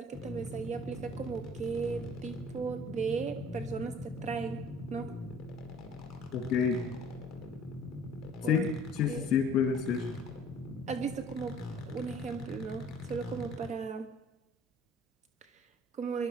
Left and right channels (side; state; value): both; normal; correlation 0.52